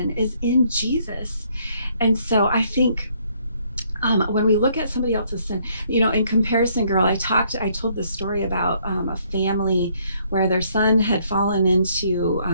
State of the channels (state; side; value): inverted; both; correlation -0.67